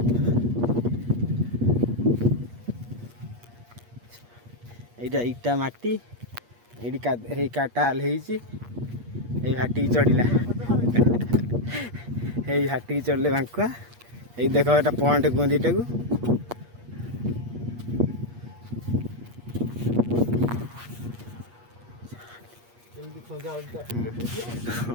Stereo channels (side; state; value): left; late; 8.4 ms